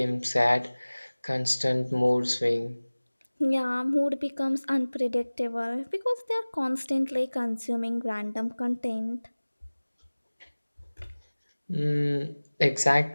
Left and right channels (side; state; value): both; inverted; correlation -1.00